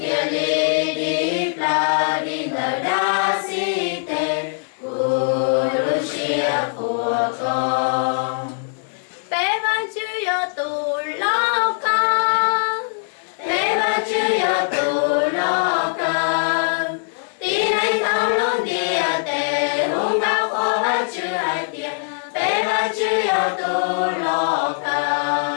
lý đi la đi nở đa si tê Lucia của con. Bé văn chữ yo tu lo con. Bé văn chữ yo tu lo con. Tí này thao luôn đi tê hung cao khó văn chữ hai tiền. Bé văn chữ yo tu lo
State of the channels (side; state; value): right; silent; digital silence